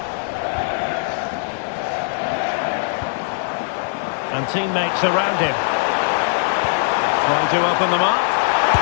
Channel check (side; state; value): right; silent; 65 dB below the other